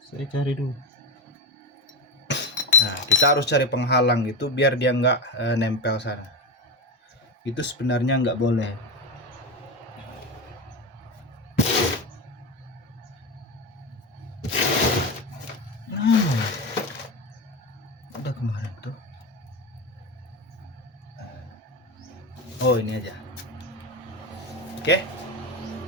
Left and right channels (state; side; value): normal; both; correlation 0.18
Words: Saya cari dulu. Nah, kita harus cari penghalang gitu biar dia nggak nempel sana. Itu sebenarnya nggak boleh. Udah kemarin tuh. Oh, ini aja. Oke.